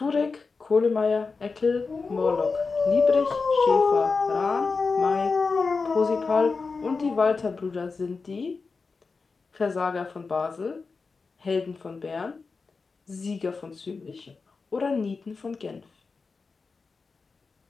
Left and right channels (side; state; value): right; quieter; 4.5 dB